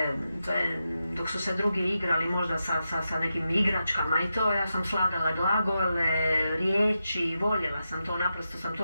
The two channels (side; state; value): both; inverted; correlation -0.88